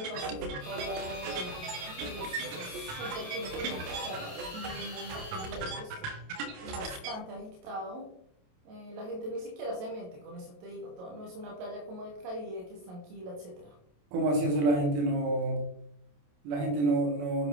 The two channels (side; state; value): left; late; 27 ms